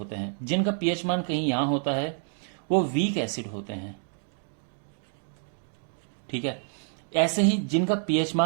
हैं। जिनका पीएच मान कहीं यहां होता है वो वीक एसिड होते हैं, ठीक है। ऐसे ही जिनका पीएच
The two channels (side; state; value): left; silent; 59 dB below the other